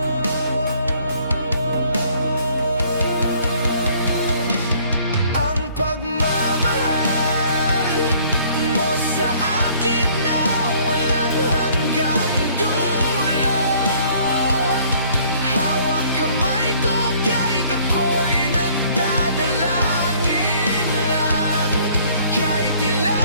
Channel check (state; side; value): inverted; both; correlation -0.58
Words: Ang pagmamahal mo sa akin na walang hanggang dulo. Hawak kamay ko kahit ako'y nagdadalangin lang. Kahit